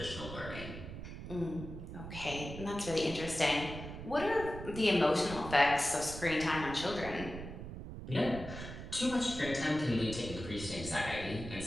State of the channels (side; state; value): right; noise; rumble, 9 dB below the sound